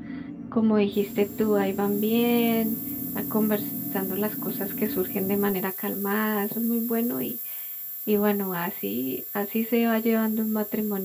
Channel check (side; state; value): both; identical; correlation 1.00